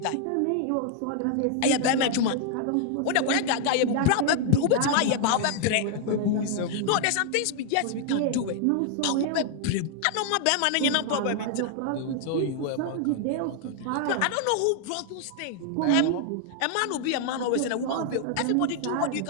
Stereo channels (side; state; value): both; different; correlation 0.00